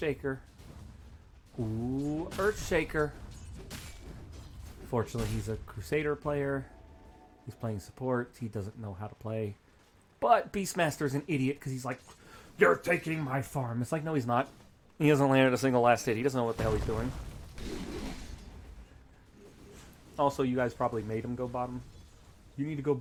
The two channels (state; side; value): identical; both; correlation 1.00